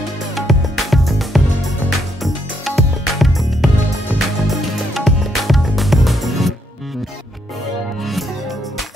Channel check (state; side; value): normal; both; correlation 0.75